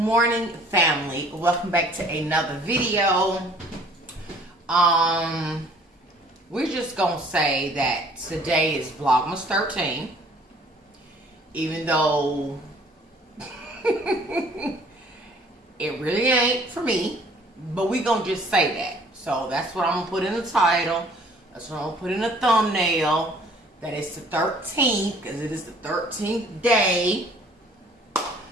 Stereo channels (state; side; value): normal; both; correlation 0.56